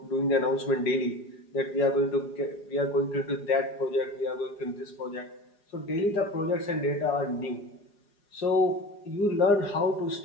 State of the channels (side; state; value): right; late; 4.9 ms